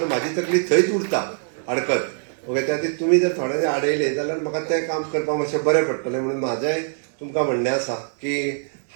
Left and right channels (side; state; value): left; silent; digital silence